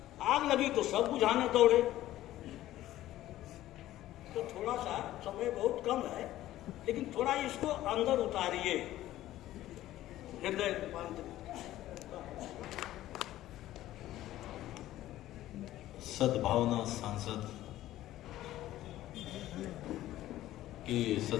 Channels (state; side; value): quieter; right; 14.5 dB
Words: आग लगी तो सब बुझाने दौड़े। तो थोड़ा सा समय बहुत कम है, लेकिन थोड़ा इसको अंदर उतारिए, हृदय रूपांतरित। सद्भावना सांसद की